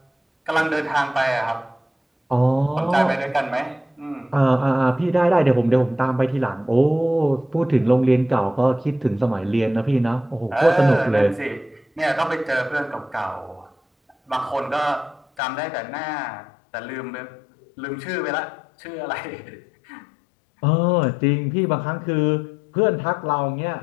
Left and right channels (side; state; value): right; drops out; at 15.2 s